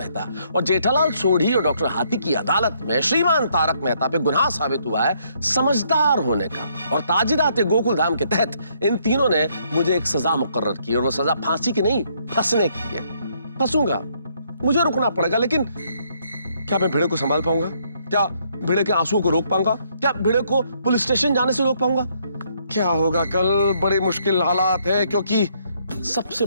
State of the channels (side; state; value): both; inverted; correlation -0.70